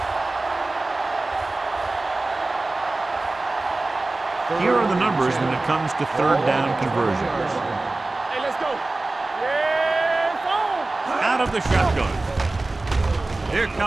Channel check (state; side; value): quieter; left; 3.1 dB